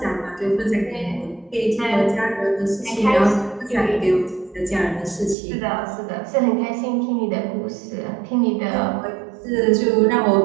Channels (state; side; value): drops out; left; at 5.4 s